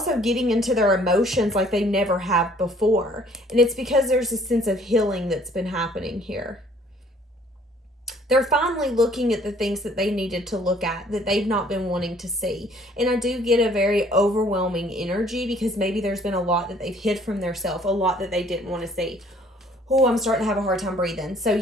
getting into their emotions like they never have before. And it's because there's a sense of healing that's been happening here. They're finally looking at the things that they needed to look at, that they've not been wanting to see. And I do get a very overwhelming energy because maybe there's been a lot that they've hid from themselves, a lot that they didn't want to see. Oh, I'm starting to have a hard time breathing. So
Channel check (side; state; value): both; normal; correlation 0.58